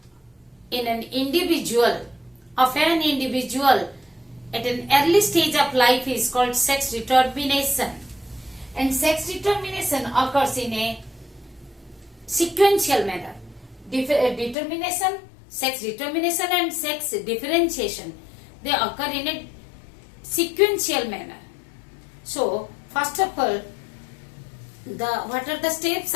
in an individual, of an individual at an early stage of life is called sex determination. And sex determination occurs in a sequential manner. Determination, sex determination and sex differentiation, they occur in a sequential manner. So, first of all, what are the steps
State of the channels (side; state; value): right; drops out; at 14.6 s